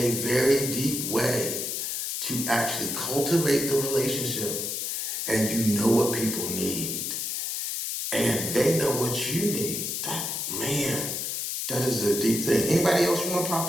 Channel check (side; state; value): left; noise; hiss, 2 dB below the sound